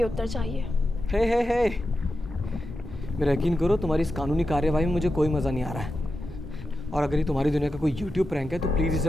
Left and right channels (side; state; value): both; normal; correlation 0.90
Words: उत्तर चाहिए। हे मेरा यकीन करो, तुम्हारी इस कानूनी कार्यवाही में मुझे कोई मज़ा नहीं आ रहा है। और अगर ये तुम्हारी दुनिया का कोई YouTube प्रैंक है तो प्लीज़ इसे